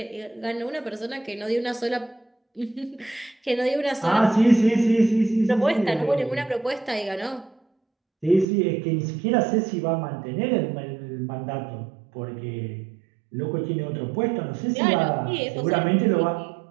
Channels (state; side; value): drops out; left; at 8.5 s